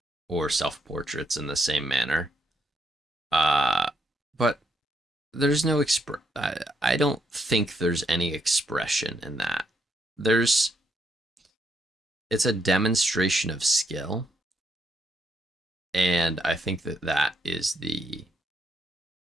or self-portraits in the same manner. But there's no I don't think there's any expression in that. It's a demonstration of skill, and I think that is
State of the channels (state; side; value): normal; both; correlation 0.76